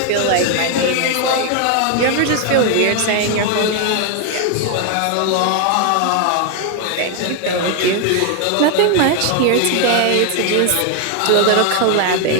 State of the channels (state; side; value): different; both; correlation 0.01